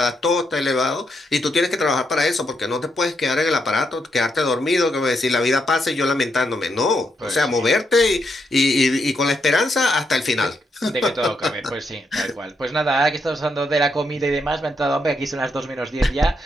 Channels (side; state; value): both; normal; correlation 0.79